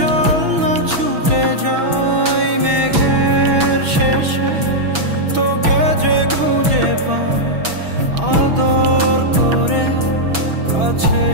না ছুটে যাই মেঘের শেষে, তোকে যে খুঁজে পাই আদর করে কাছে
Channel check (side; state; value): left; late; 6.1 ms